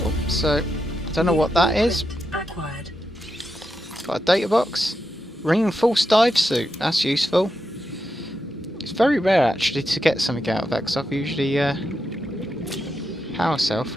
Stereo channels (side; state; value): both; normal; correlation 0.86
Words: Oh, so I don't know what that is. Acquired. Got a data box. Reinforced dive suit. That's useful. It's very rare actually to get something out of that because I've usually power cell